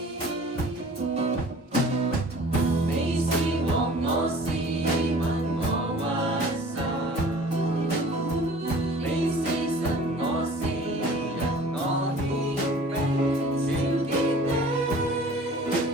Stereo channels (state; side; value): normal; both; correlation 0.47